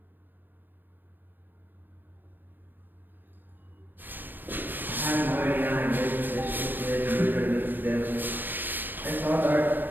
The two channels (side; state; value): left; late; 0.092 ms